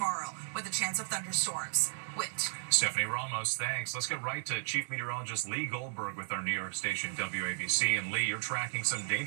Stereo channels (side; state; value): left; silent; digital silence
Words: with a chance of thunderstorms. Whit. Stephanie Ramos, thanks. Let's get right to Chief Meteorologist Lee Goldberg with our New York station WABC. And Lee, you're tracking some